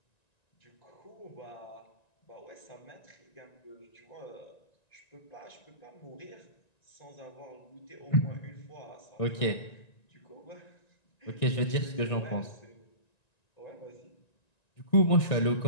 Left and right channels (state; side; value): late; right; 1.9 ms